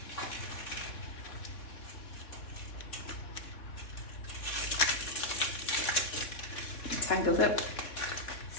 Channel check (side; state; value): right; late; 3.9 ms